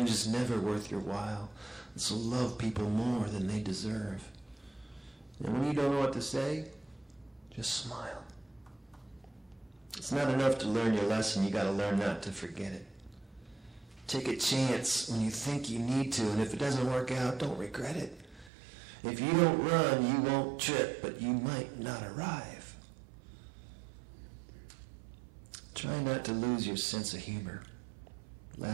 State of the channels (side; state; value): left; drops out; at 18.5 s